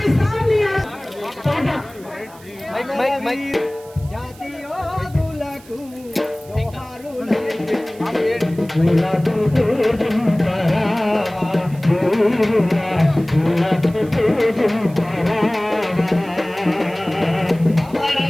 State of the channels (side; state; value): right; noise; hiss, 24 dB below the sound